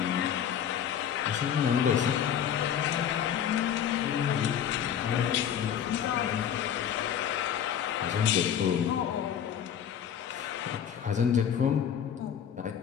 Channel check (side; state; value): right; quieter; 9.0 dB